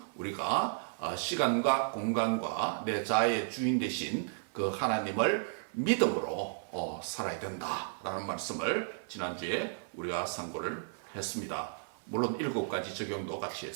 우리가 시간과 공간과 내 자아의 주인 되신 그 하나님을 믿음으로 살아야 된다라는 말씀을 지난주에 우리가 상고를 했습니다. 물론 7가지 적용도 같이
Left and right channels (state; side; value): silent; left; 55 dB below the other